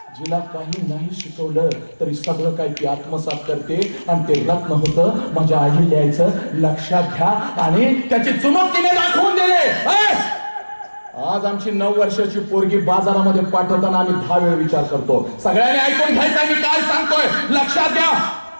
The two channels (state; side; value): inverted; both; correlation -1.00